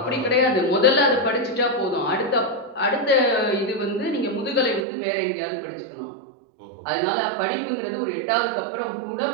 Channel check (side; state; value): left; drops out; at 4.9 s